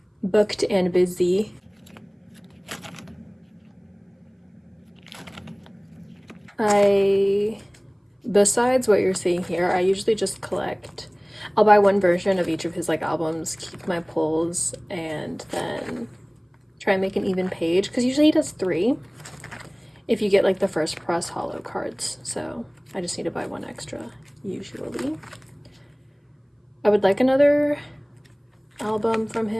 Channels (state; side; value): identical; both; correlation 1.00